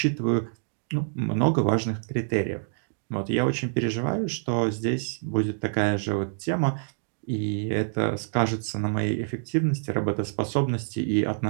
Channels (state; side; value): silent; left; digital silence